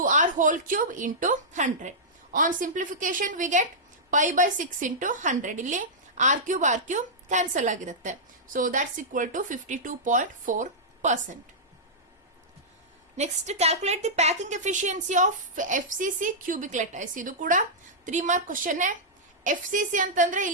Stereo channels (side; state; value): both; normal; correlation -0.12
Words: whole cube into 100. On simplification we get pi by 6 into 100. ಇಲ್ಲಿ r cube ಕ್ಯಾನ್ಸಲ್ ಆಗಿರುತ್ತೆ. So that's equal to 52.4%. Next calculate the packing efficiency of FCC cubic lattice. ಇದು ಕೂಡ 3 ಮಾರ್ಕ್ ಕ್ವಶನ್. FCC ಅಂತಂದ್ರೆ